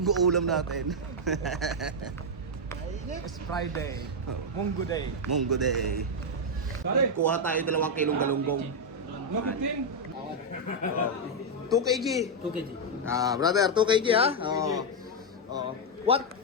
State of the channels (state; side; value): normal; both; correlation 0.00